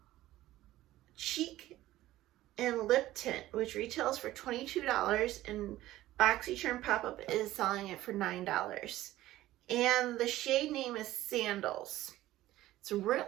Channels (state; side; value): quieter; left; 15.5 dB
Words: Cheek and Lip Tint, which retails for $22, and Boxycharm Pop-Up is selling it for $9. And the shade name is Sandals. It's really